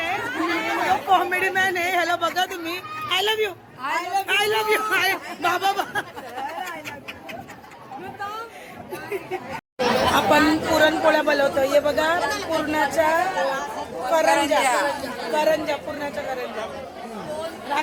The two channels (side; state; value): both; identical; correlation 1.00